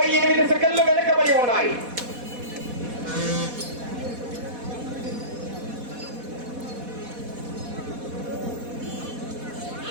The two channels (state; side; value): late; left; 4.1 ms